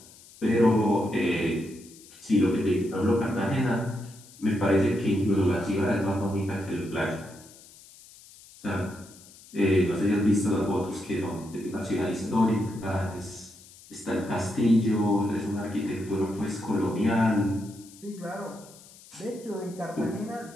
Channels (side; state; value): left; noise; hiss, 22 dB below the sound